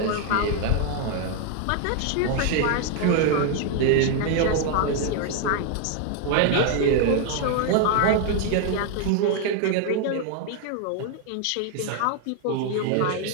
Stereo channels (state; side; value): different; both; correlation 0.01